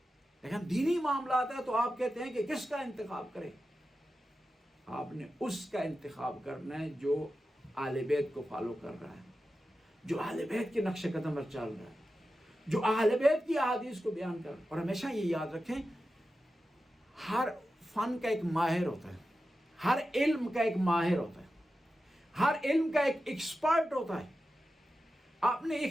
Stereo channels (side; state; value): both; normal; correlation 0.92